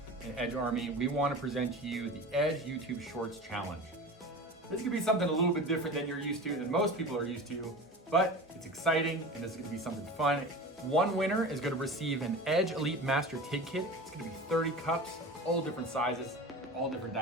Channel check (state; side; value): normal; both; correlation 0.33